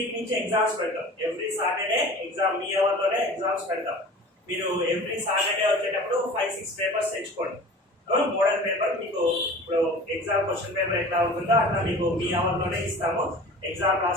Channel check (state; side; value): normal; both; correlation 0.40